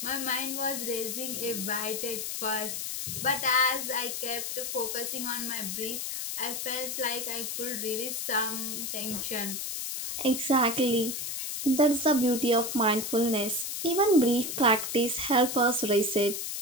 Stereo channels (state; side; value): noise; left; hiss, 4 dB below the sound